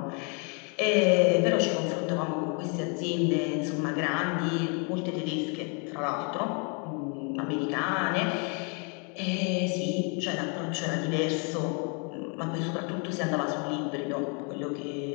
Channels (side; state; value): right; quieter; 36.3 dB